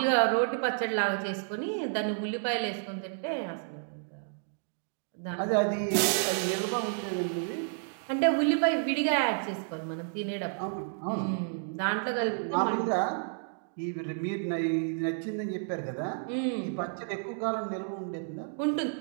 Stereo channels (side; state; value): left; silent; digital silence